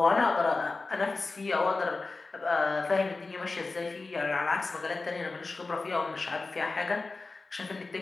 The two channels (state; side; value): quieter; right; 3.6 dB